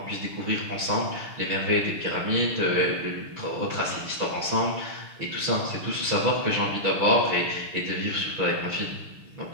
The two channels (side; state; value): left; late; 6.5 ms